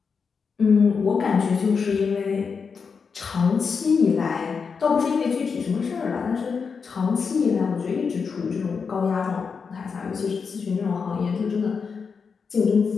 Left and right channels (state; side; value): quieter; right; 5.6 dB